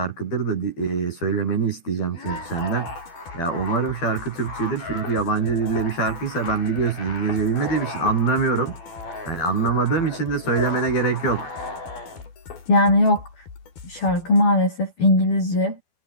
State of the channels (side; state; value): right; late; 12 ms